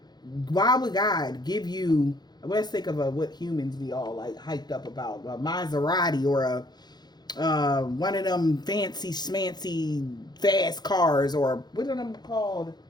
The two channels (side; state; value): right; late; 0.20 ms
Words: Why would God give you, let's think of what humans be all like hyped up about, a Maserati or one of them fancy schmancy fast cars, or what are them called,